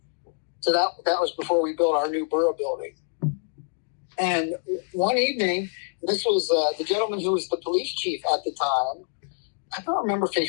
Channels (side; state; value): right; silent; digital silence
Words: So that was before we built our new borough building. And one evening, this was the gentleman who was the police chief at the time. I don't remember if he